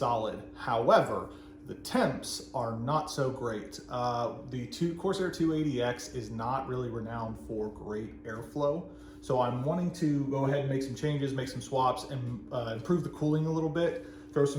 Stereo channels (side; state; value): both; identical; correlation 1.00